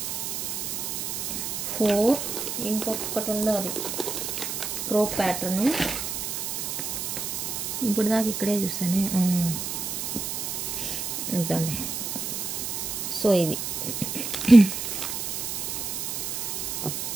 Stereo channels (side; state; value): right; noise; hiss, 3 dB below the sound